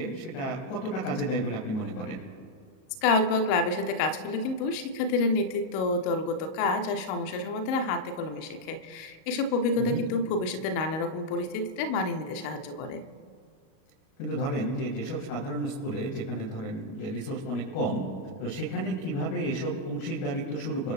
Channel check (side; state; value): right; late; 38 ms